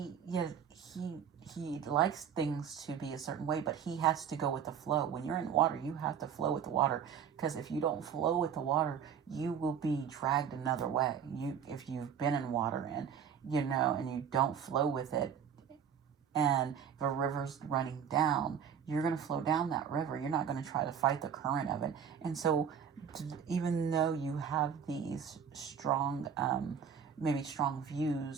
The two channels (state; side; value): quieter; left; 7.7 dB